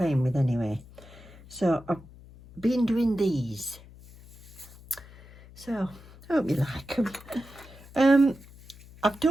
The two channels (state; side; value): noise; left; hum, 21 dB below the sound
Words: with anyway. So I've been doing these. So I hope you like them. I've